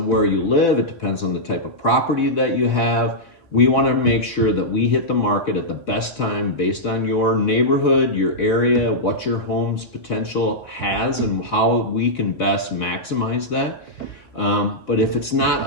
where you live. It depends on the type of property that you have. We want to make sure that we hit the market at the best time based on your neighborhood, your area, what your home's potential has, and how we can best maximize that. But if it's not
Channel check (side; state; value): right; late; 4.3 ms